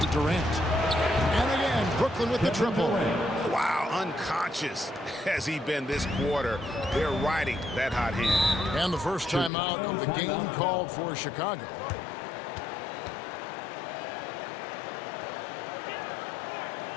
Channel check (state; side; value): drops out; right; at 9.5 s